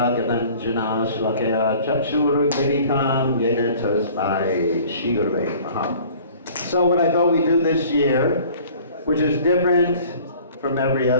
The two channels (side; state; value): both; inverted; correlation -0.49